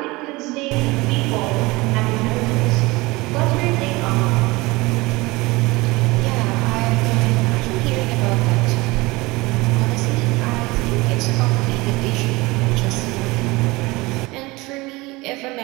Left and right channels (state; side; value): quieter; left; 22.5 dB